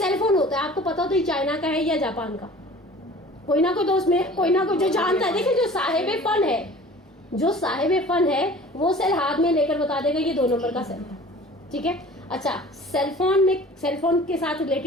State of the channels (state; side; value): normal; both; correlation 0.45